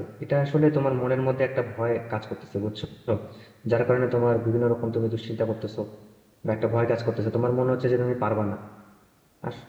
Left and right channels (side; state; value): both; identical; correlation 1.00